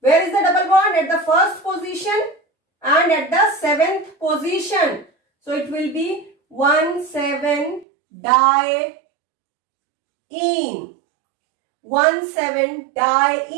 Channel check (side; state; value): left; drops out; at 7.9 s